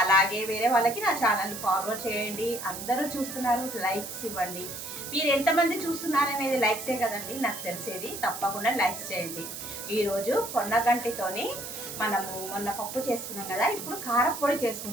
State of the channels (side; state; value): right; noise; hiss, 8 dB below the sound